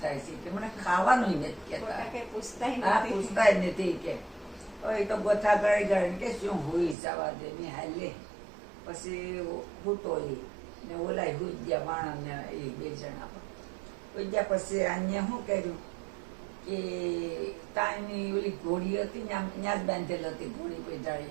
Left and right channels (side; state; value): left; drops out; at 7.0 s